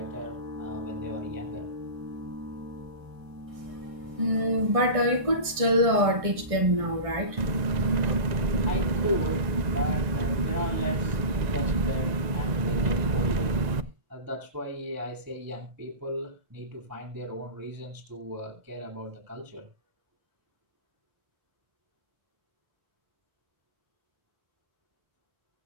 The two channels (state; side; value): late; left; 1.6 ms